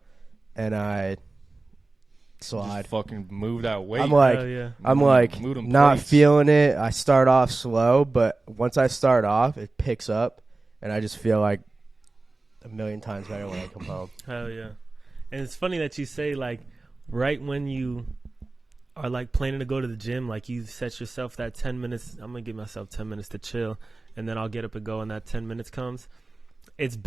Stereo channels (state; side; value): quieter; left; 3.3 dB